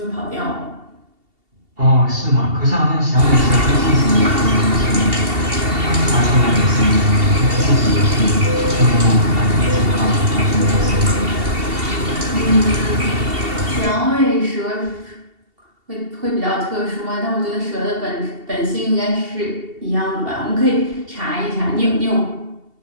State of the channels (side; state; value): left; late; 2.7 ms